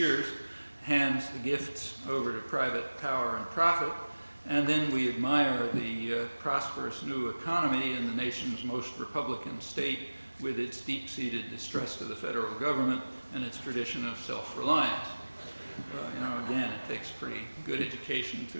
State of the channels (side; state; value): both; inverted; correlation -1.00